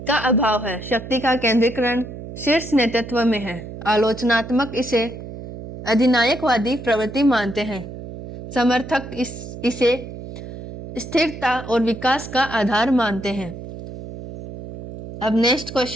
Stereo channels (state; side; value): noise; right; hum, 11 dB below the sound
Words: का अभाव है। शक्ति का केंद्रीकरण शीर्ष नेतृत्व में है। आलोचनात्मक इसे अधिनायकवादी प्रवृत्ति मानते हैं। समर्थक इसे स्थिरता और विकास का आधार मानते हैं। अब नेक्स्ट